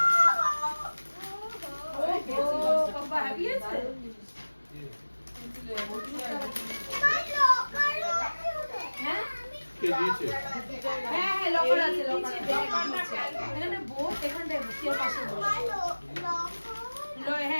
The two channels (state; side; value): inverted; both; correlation -1.00